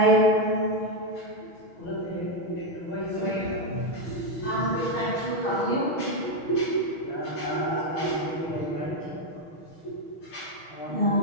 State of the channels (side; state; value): right; late; 6.3 ms